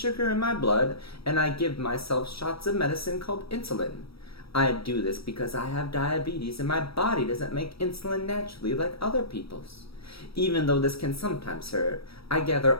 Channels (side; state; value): right; late; 0.76 ms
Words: in my blood, and I give myself shots of medicine called insulin. I do this because I have diabetes, and my body doesn't make insulin naturally like other people's. Even though this can sometimes hurt, I gather